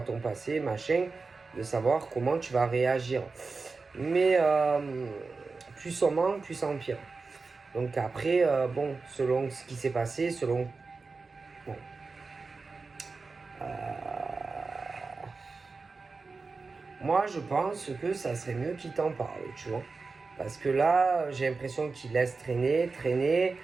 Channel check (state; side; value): quieter; left; 4.2 dB